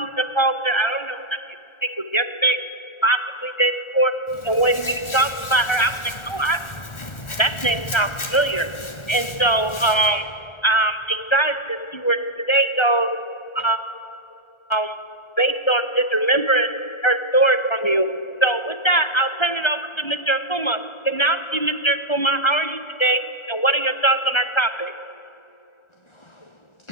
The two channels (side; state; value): right; late; 1.4 ms